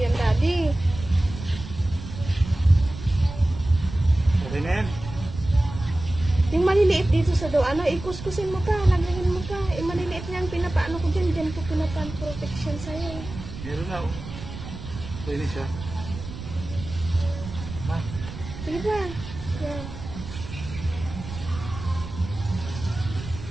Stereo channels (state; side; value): noise; right; rumble, 11 dB below the sound